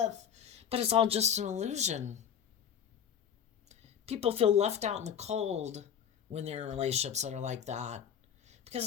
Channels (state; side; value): quieter; right; 8.5 dB